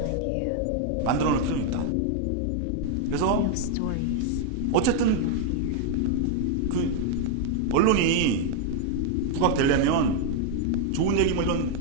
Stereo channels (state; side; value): different; both; correlation 0.00